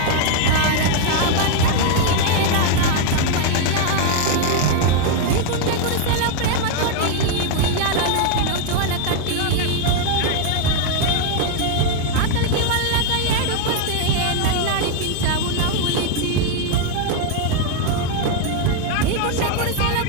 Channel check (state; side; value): different; both; correlation 0.01